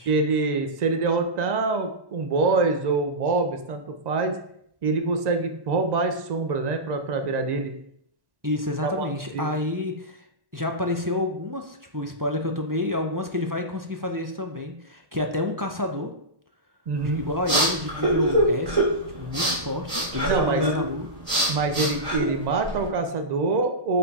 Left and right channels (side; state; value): left; late; 1.1 ms